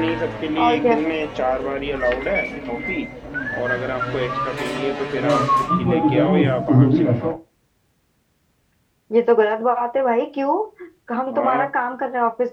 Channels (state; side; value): identical; both; correlation 1.00